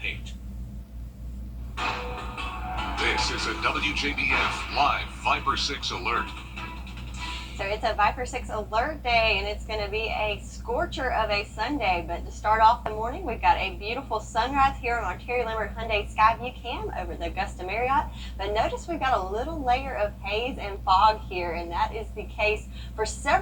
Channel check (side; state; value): both; identical; correlation 1.00